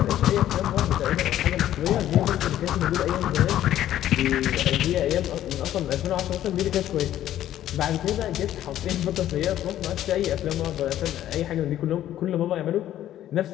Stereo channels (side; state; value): right; quieter; 12.3 dB